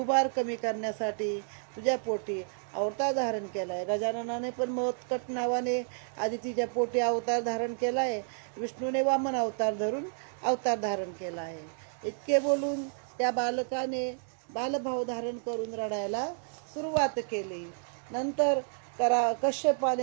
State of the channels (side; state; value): left; silent; digital silence